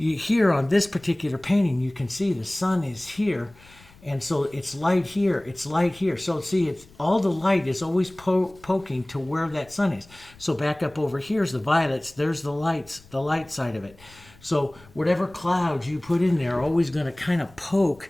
here on this particular painting, you can see the sun is here. And so it's light here, it's light here. So see, it's all the light is always poking to where that sun is. So back up over here is the violets, there's the lights, the light side of it. So whatever clouds you put in there are always going to kind of poke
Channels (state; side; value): noise; left; rumble, 25 dB below the sound